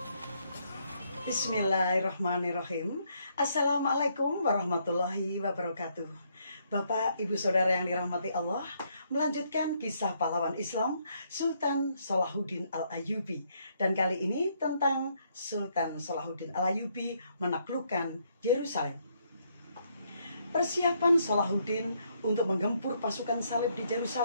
Bismillahirrahmanirrahim. Assalamualaikum warahmatullahi wabarakatuh. Bapak, Ibu, Saudara yang dirahmati Allah, melanjutkan kisah pahlawan Islam Sultan Salahuddin Al-Ayyubi. Dan kali ini tentang Sultan Salahuddin Al-Ayyubi menaklukkan Yerusalem. Persiapan Salahuddin untuk menggempur pasukan salib di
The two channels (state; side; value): inverted; both; correlation -0.72